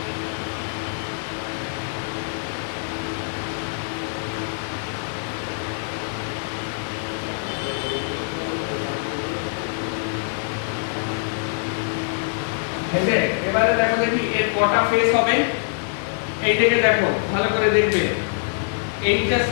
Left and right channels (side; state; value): right; silent; digital silence